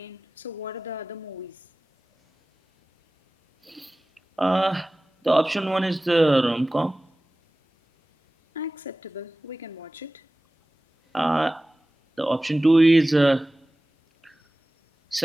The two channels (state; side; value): normal; both; correlation 0.97